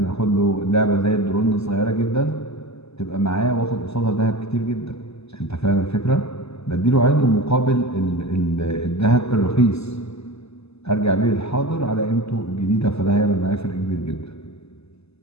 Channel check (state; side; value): late; right; 0.79 ms